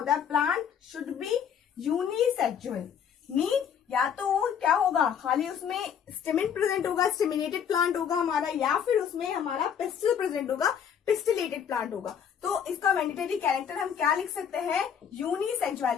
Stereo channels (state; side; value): quieter; right; 8.1 dB